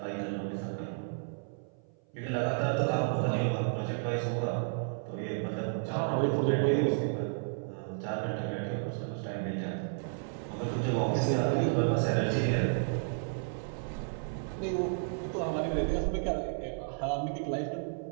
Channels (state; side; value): silent; left; 56 dB below the other